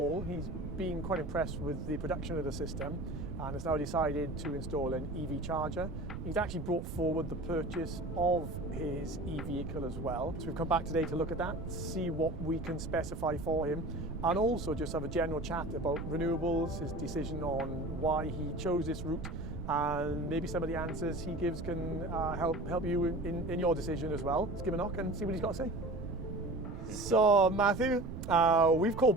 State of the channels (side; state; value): right; noise; rumble, 7 dB below the sound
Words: He's been quite impressed with the production of the system and has now decided to install an EV charger. He's actually brought forward the purchase of his e-vehicle as well. So we've come back today to look at that, see what we can specify for him, and also just have a general chat about renewables, his decision on why he chose this route, and maybe some of the answers he gives can help you in your decision as well. Let's give him a knock and see what he's got to say. So Matthew, we've called